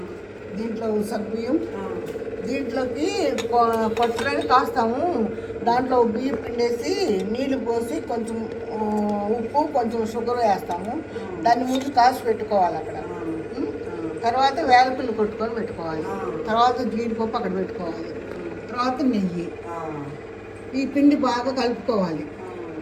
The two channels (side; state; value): both; identical; correlation 1.00